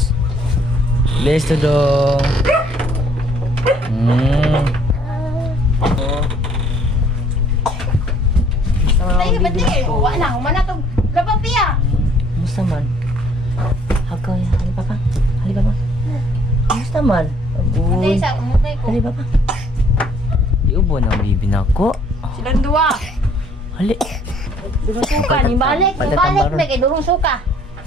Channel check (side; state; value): both; normal; correlation 0.61